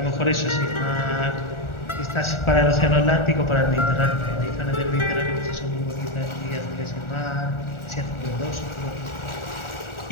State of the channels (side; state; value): right; late; 1.4 ms